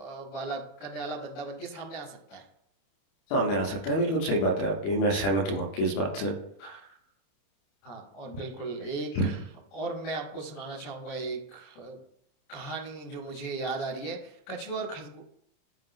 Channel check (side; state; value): right; late; 30 ms